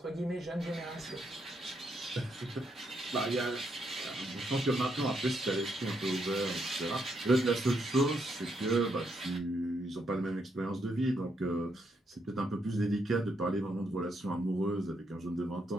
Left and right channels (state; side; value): normal; both; correlation 0.77